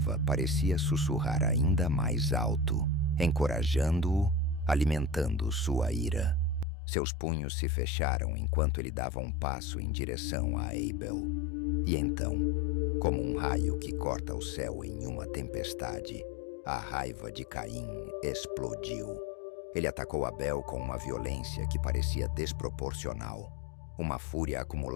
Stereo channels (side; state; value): right; drops out; at 6.7 s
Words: parecia sussurrar ainda mais alto, encorajando-o, alimentando sua ira. Seus punhos se fecharam enquanto ele dava um passo em direção a Abel. E então, como um raio que corta o céu em uma tempestade, a raiva de Caim explodiu. Ele atacou Abel com uma violência que parecia desproporcional. Uma fúria